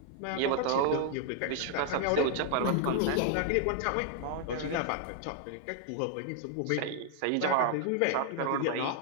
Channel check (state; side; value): different; both; correlation 0.00